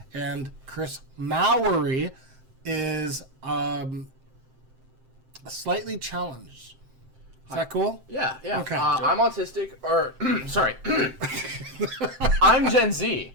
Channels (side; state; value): left; late; 7.7 ms